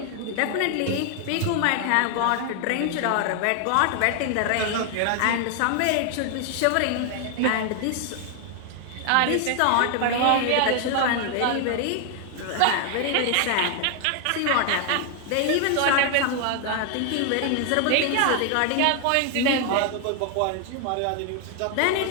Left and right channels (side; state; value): both; different; correlation 0.00